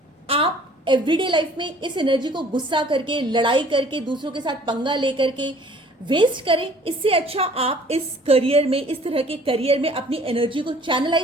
आप एवरीडे लाइफ में इस एनर्जी को गुस्सा करके, लड़ाई करके, दूसरों के साथ पंगा लेकर के वेस्ट करें। इससे अच्छा आप इस करियर में, इस तरह के करियर में अपनी एनर्जी को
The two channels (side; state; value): both; normal; correlation 0.54